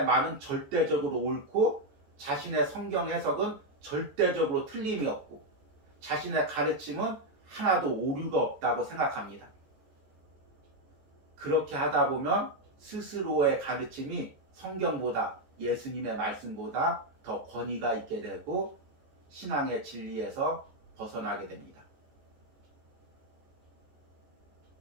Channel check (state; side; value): late; left; 14 ms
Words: 말은 절대적으로 옳고 자신의 성경 해석은 절대적으로 틀림이 없고 자신의 가르침은 하나도 오류가 없다고 생각합니다. 그렇게 하다 보면 스스로의 가르침이 성경보다, 예수님의 말씀보다 더 권위가 있게 되고 신앙의 진리에서 벗어나게 됩니다.